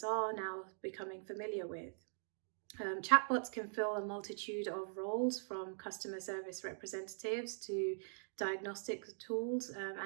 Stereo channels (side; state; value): left; silent; digital silence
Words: are now becoming familiar with. Chatbots can fill a multitude of roles, from customer service representatives to diagnostic tools